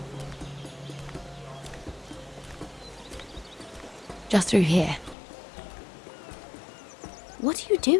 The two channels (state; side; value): drops out; right; at 5.2 s